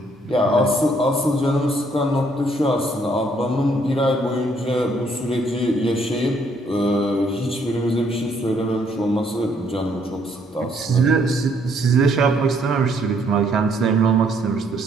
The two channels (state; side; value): normal; both; correlation 0.67